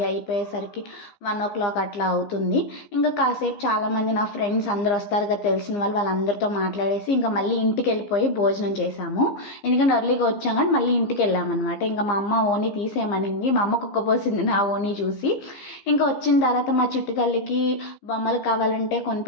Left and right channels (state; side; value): late; right; 15 ms